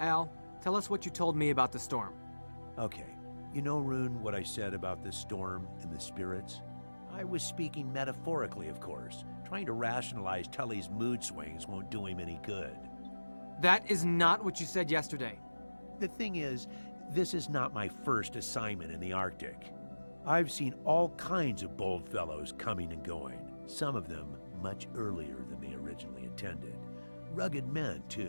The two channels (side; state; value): both; inverted; correlation -1.00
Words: tell us what you told me about the storm. Okay. You know, Rune, what I said about the storm and the spirits? I was speaking metaphorically, of course. Trying to rationalize Tully's mood swings won't do him any good. That is not what you said yesterday. The thing is, this is not my first assignment in the Arctic. I've seen all kinds of bold fellows coming and going, some of them much earlier than they originally intended. Rugged men,